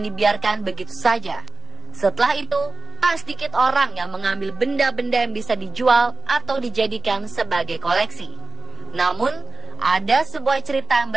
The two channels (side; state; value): left; quieter; 3.8 dB